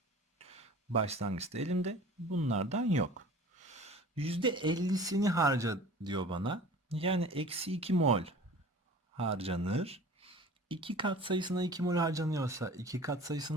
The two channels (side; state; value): both; normal; correlation 0.43